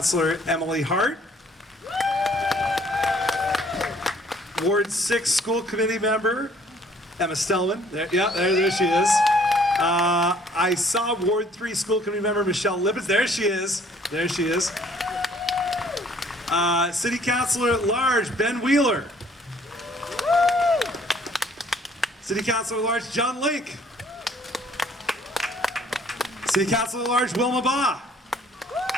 Emily Hart. Ward 6 School Committee member Emma Stellman. There she is. I saw Ward 3 School Committee member Michelle Lippitz. There she is. City Councilor at Large Ben Wheeler. City Councilor at Large John Link. City Councilor at Large Wilma Baugh.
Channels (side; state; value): both; normal; correlation 0.59